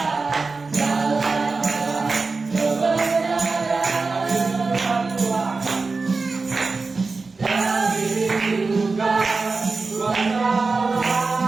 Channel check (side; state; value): left; quieter; 4.1 dB